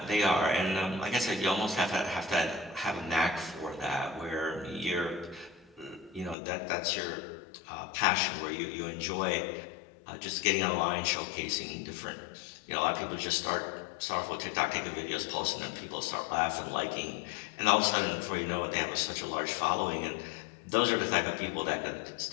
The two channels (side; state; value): right; drops out; at 6.4 s